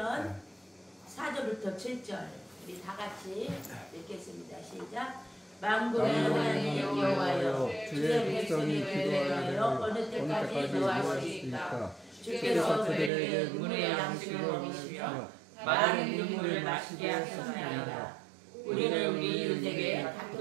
4절부터 7절 우리 다 같이 읽겠습니다. 시작. 만군의 하나님 여호와여, 주의 백성이 기도하여 어느 때까지 노하시리까? 주께서 그들에게 눈물의 양식을 먹이시며 많은 눈물을 마시게 하셨나이다. 우리는 우리 이웃에게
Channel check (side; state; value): left; drops out; at 13.1 s